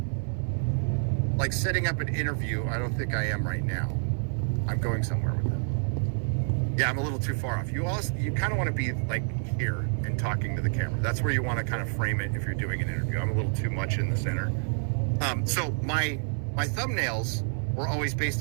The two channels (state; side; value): silent; left; 56 dB below the other